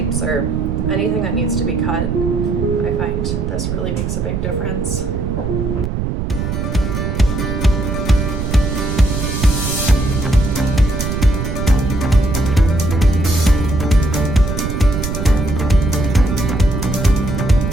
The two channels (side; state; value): right; noise; rumble, 2 dB below the sound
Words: or anything that needs to be cut. I find this really makes a big difference.